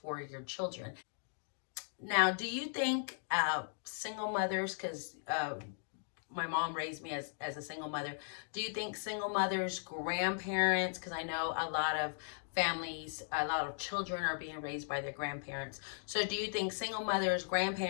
your children. Now, do you think single mothers, because my mom raised me as a single mother. Do you think single mothers, grandparents, because I know a lot of families, a lot of children are being raised by their grandparents. So do you think single mothers,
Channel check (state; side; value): silent; right; digital silence